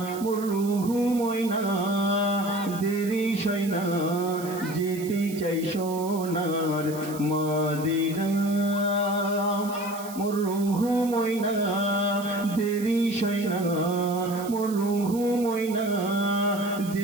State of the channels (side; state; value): right; noise; hiss, 15 dB below the sound